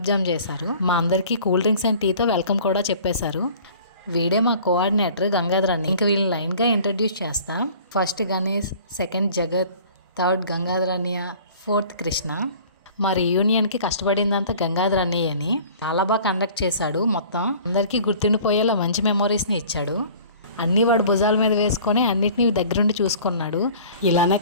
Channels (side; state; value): both; inverted; correlation -0.47